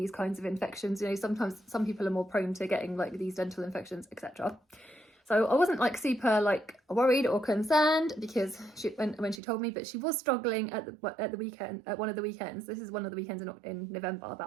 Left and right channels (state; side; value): drops out; left; at 9.4 s